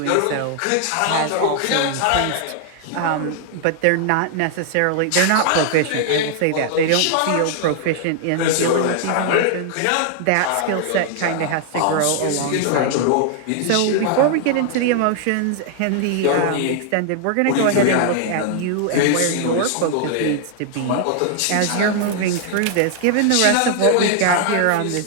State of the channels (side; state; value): both; different; correlation 0.00